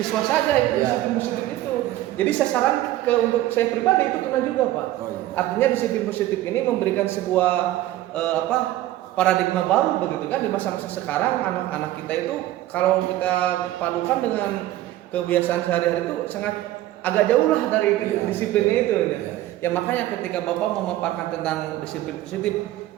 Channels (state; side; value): quieter; left; 14.9 dB